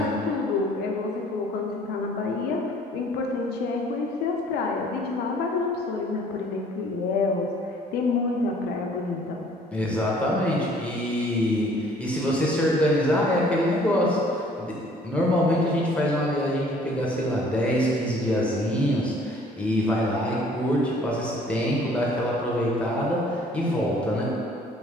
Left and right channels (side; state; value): both; normal; correlation 0.56